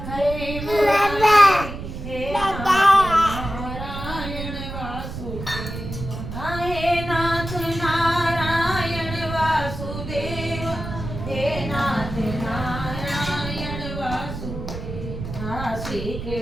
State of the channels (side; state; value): right; noise; rumble, 8 dB below the sound